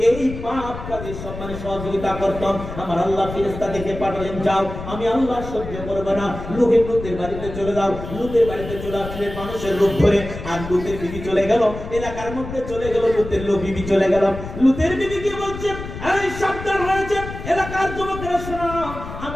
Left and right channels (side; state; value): left; noise; rumble, 10 dB below the sound